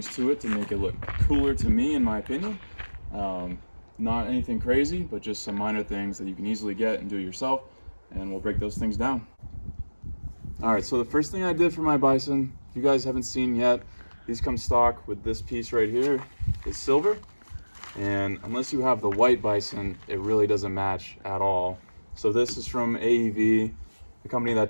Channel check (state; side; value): inverted; both; correlation -1.00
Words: to it to make it look cooler to me, in my opinion. Not anything crazy, but just some minor things that you can easily get and do yourself, and we'll break those things down. Alright, so the first thing I did for my Bison, if you guys haven't seen yet, these come stock with this piece right here. It's silver, and unless you have the white Bison, it really doesn't match at all. So this is from AEV, the company that